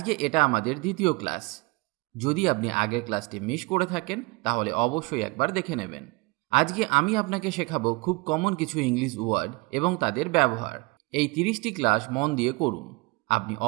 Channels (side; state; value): left; quieter; 26.0 dB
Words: এটা আমাদের দ্বিতীয় ক্লাস। যদি আপনি আগের ক্লাসটি মিস করে থাকেন তাহলে অবশ্যই একবার দেখে নেবেন। আজকে আমি আপনাকে শেখাবো খুব কমন কিছু ইংলিশ ওয়ার্ড এবং তাদের ব্যবহার। এই 30টি ক্লাস মন দিয়ে করুন, আপনি